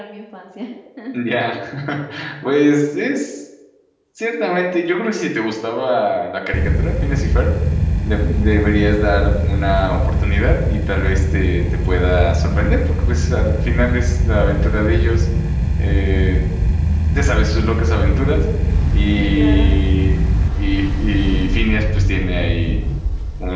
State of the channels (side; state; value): both; identical; correlation 1.00